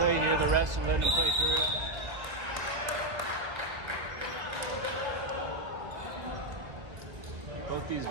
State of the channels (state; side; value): late; left; 1.9 ms